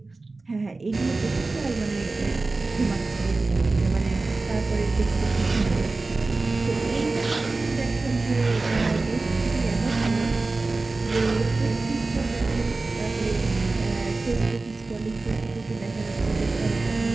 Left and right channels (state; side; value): quieter; left; 3.5 dB